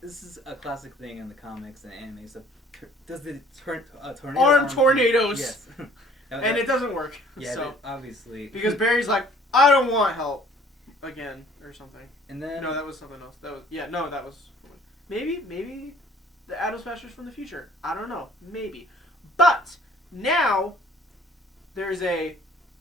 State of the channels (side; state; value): both; normal; correlation 0.55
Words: This is a classic thing in the comics and anime. So does the tornado arm tornadoes? Yes. And it doesn't work. Yeah, so. Obviously. Because Barry's like, I don't want help again or something. And then no, that was something else. That was maybe the Atom Smashers from the future. I don't know. Maybe. But now there's a